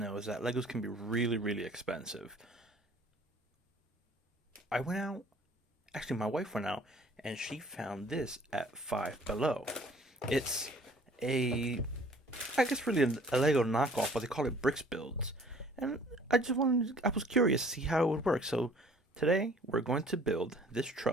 is that Legos can be really, really expensive. I went out, actually my wife went out, and she found this at Five Below. It's a, I guess really a Lego knockoff, but they call it Brix Builds. And I was curious to see how it would work. So today we're going to build this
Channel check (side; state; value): both; normal; correlation 0.53